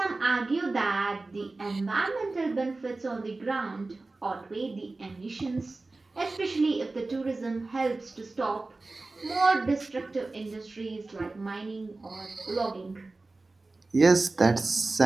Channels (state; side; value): quieter; left; 3.3 dB